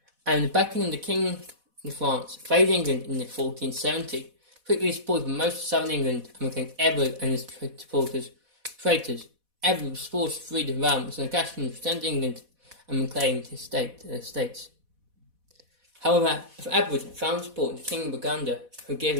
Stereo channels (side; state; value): left; late; 4.1 ms